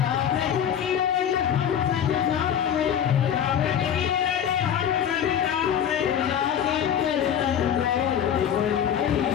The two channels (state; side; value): quieter; right; 9.1 dB